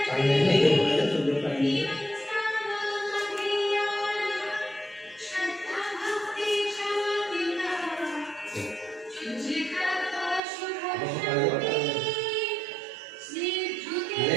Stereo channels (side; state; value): left; drops out; at 10.4 s